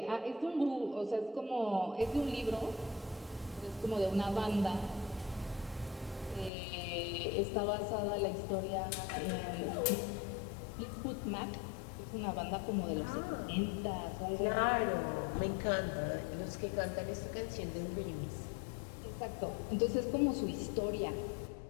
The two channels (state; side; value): drops out; right; at 6.5 s